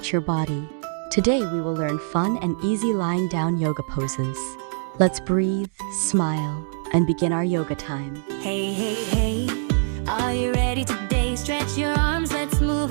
your body. Today we will learn fun and easy lying down yoga poses. Let's breathe, smile, and begin our yoga time. Hey, hey, hey, are you ready today? Stretch your arms, let's move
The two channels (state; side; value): silent; left; 63 dB below the other